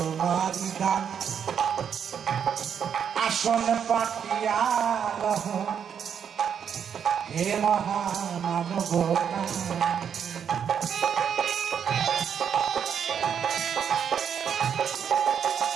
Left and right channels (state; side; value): quieter; left; 7.9 dB